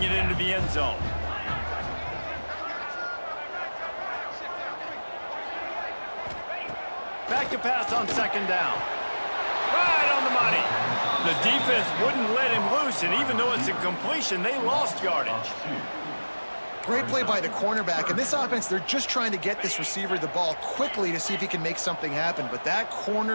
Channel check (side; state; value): both; inverted; correlation -1.00